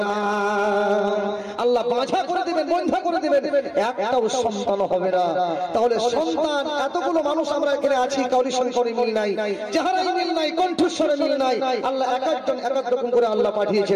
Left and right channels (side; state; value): both; identical; correlation 1.00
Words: না, আল্লাহ বাঁধা করে দেবেন, বন্ধা করে দেবেন, একটাও সন্তান হবে না। তাহলে সন্তান, এতগুলো মানুষ আমরা এখানে আছি, কাউরির সঙ্গে কাউরি মিল নাই, চেহারায় মিল নাই, কণ্ঠস্বরে মিল নাই, আল্লাহ এক একজন এক এক রকম করে আল্লাহ পাঠিয়েছে,